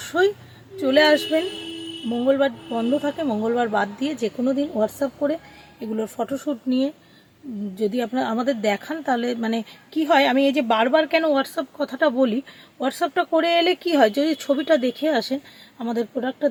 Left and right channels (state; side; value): identical; both; correlation 1.00